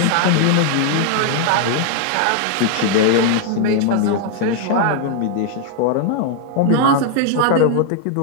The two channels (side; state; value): both; different; correlation 0.00